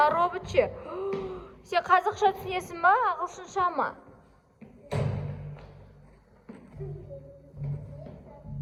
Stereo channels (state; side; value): identical; both; correlation 1.00